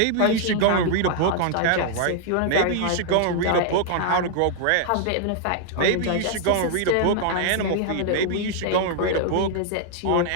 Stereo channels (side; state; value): both; different; correlation -0.01